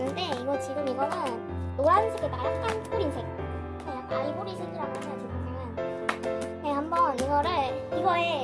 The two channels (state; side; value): identical; both; correlation 1.00